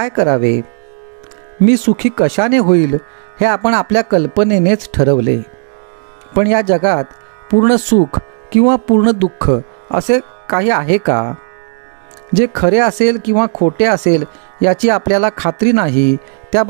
करावे? मी सुखी कशाने होईल हे आपण आपल्या कल्पनेनेच ठरवले. पण या जगात पूर्ण सुख किंवा पूर्ण दुःख असे काही आहे का? जे खरे असेल किंवा खोटे असेल याची आपल्याला खात्री नाही, त्या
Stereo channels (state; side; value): silent; left; 59 dB below the other